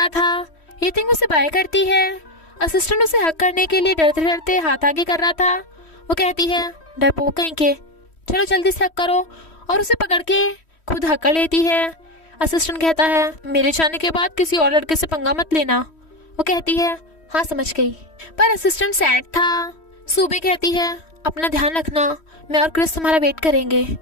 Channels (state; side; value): late; right; 3.1 ms